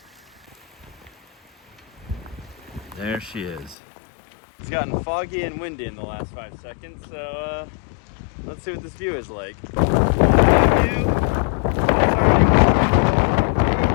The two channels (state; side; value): drops out; right; at 3.8 s